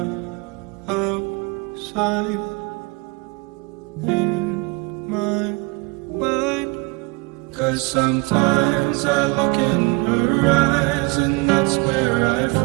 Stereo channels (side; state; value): left; quieter; 26.9 dB